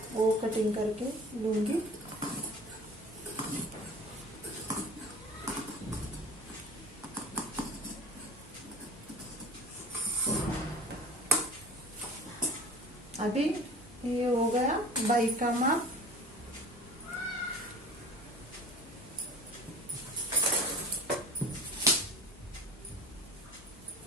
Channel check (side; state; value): both; normal; correlation 0.40